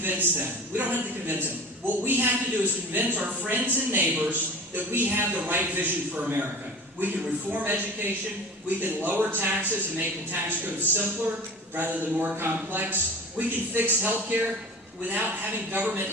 them. We don't have to convince them. What we have to do is convince our friends and neighbors that we have the right vision for America. We can reform education. We can lower taxes and make the tax code simpler rather than more complex. We can fix health care without having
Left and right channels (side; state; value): both; normal; correlation 0.38